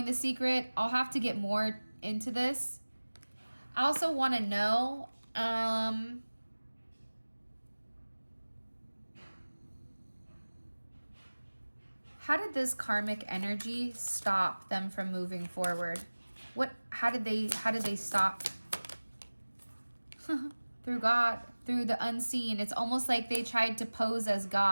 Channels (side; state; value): both; inverted; correlation -1.00